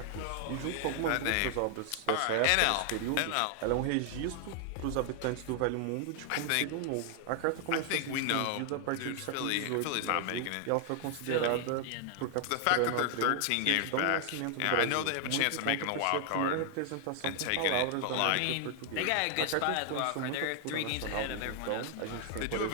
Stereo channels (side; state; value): both; different; correlation 0.00